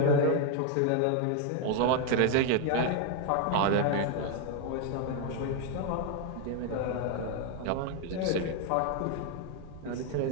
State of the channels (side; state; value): both; different; correlation 0.01